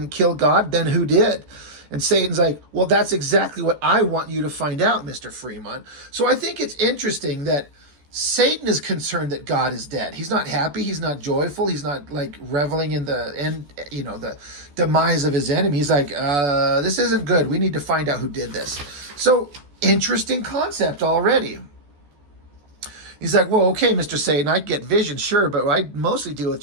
kill God? Then who did? And Satan's like, well, that's exactly what I want you to find out, Mr. Fremont. So I think it's interesting that Satan is concerned that God is dead. He's not happy. He's not joyful. He's not like reveling in the demise of his enemy. He's like, this isn't good. We need to find out who did this. So interesting concept already. He's like, well, okay, Mr. Satan, I get vision, sure, but I mostly deal with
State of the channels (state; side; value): late; left; 14 ms